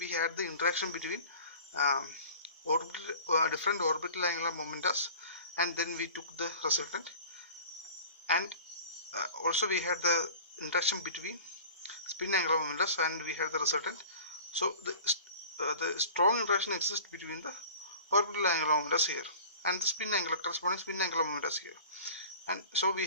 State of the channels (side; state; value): both; inverted; correlation -0.42